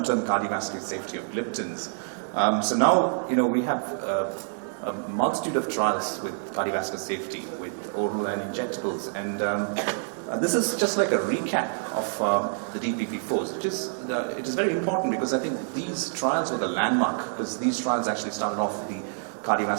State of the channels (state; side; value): silent; left; digital silence